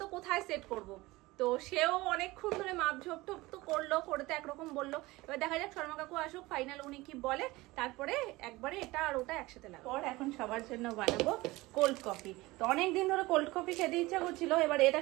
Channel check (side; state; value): left; quieter; 20.4 dB